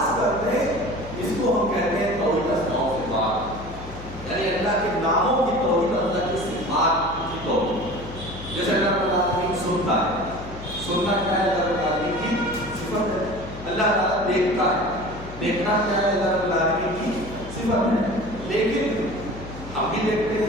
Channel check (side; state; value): left; noise; hum, 13 dB below the sound